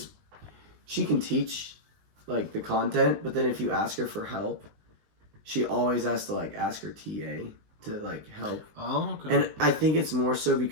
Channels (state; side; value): late; left; 19 ms